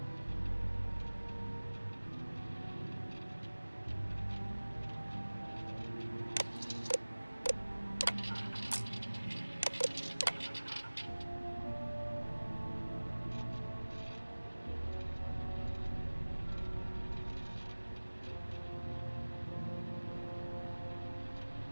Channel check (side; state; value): both; inverted; correlation -1.00